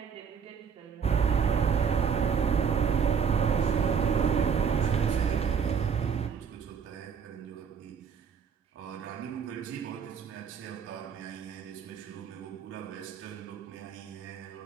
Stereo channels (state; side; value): quieter; left; 6.8 dB